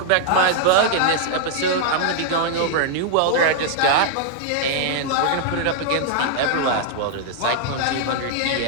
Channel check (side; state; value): both; different; correlation -0.01